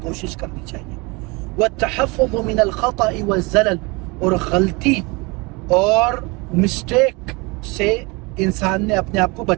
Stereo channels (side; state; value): left; quieter; 26.8 dB